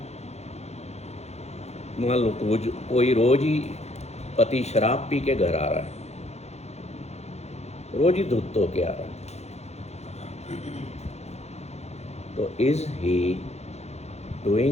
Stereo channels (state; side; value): late; right; 0.31 ms